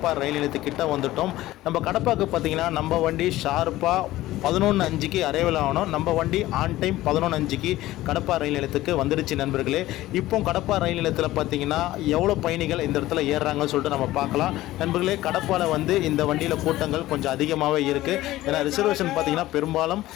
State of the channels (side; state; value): right; quieter; 16.2 dB